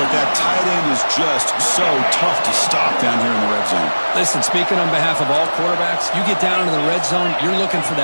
that tight end is just so tough to stop down here in the red zone. Listen, speaking on behalf of all quarterbacks, you get down into the red zone, you're looking for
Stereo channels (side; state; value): both; inverted; correlation -1.00